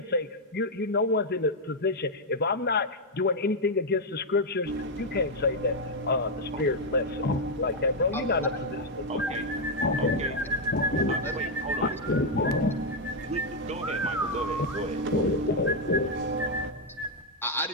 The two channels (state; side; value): normal; both; correlation 0.01